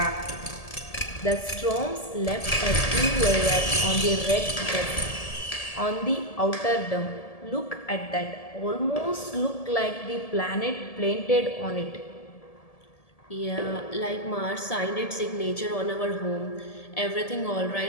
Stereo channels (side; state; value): right; late; 1.7 ms